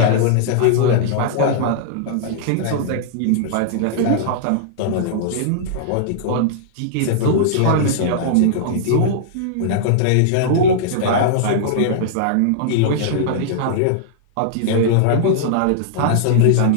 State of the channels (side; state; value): both; different; correlation -0.01